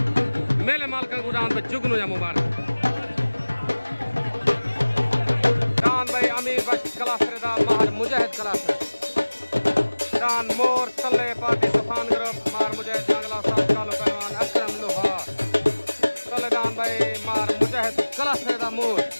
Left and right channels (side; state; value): both; inverted; correlation -1.00